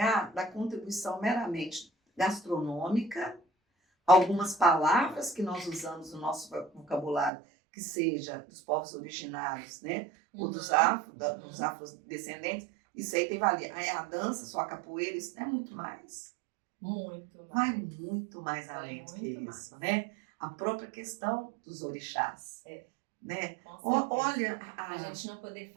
da contribuição meramente gastronômica, algumas palavras que nós usamos no nosso vocabulário, que seja dos povos originários, né? Ou dos afrodescendentes, isso aí tem valia. Aí a dança, só a capoeira, isso é muito mais. Muito mais. Vai muito mais além do que isso, né? A própria questão dos orixás. Né? Olha, a gente não poder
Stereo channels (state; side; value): drops out; left; at 7.3 s